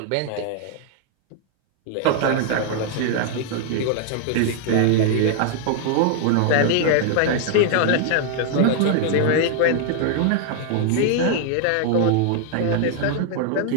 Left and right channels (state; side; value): different; both; correlation 0.00